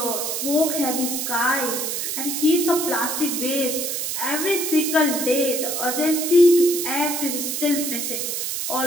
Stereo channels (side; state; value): right; noise; hiss, 2 dB below the sound